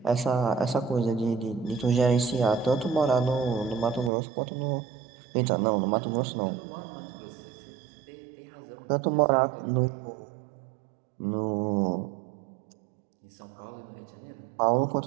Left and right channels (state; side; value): drops out; left; at 4.1 s